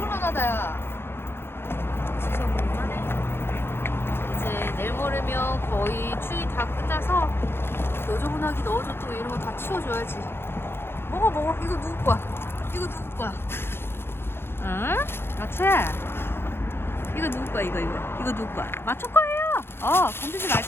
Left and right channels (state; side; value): late; right; 0.11 ms